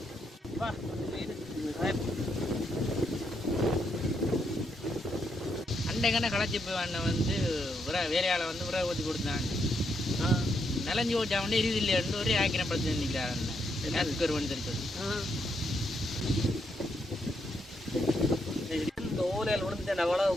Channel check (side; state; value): both; normal; correlation 0.78